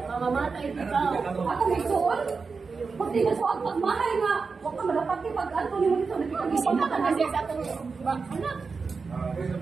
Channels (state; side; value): quieter; left; 4.8 dB